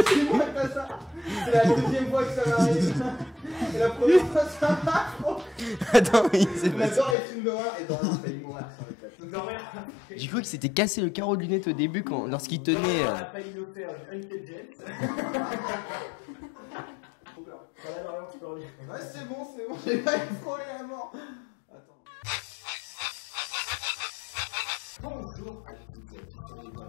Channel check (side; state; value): right; drops out; at 7.2 s